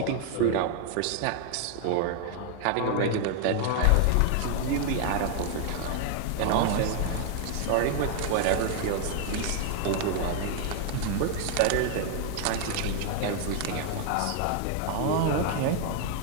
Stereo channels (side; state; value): both; different; correlation 0.00